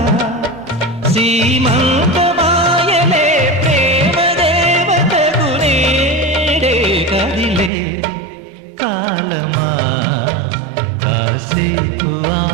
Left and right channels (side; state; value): left; drops out; at 7.7 s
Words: సీమంతమాయలే ప్రేమ దేవతకు నేడే కదిలే కాలమా కాసేపు